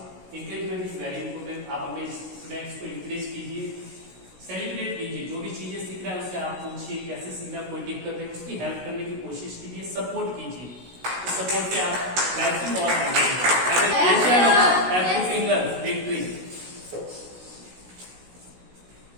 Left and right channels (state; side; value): late; left; 16 ms